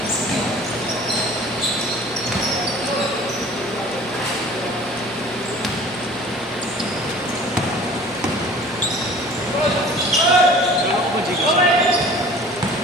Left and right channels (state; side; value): noise; left; hum, 24 dB below the sound